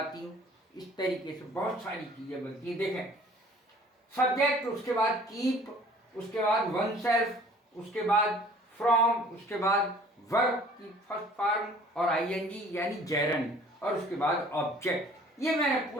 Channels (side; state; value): both; normal; correlation 0.52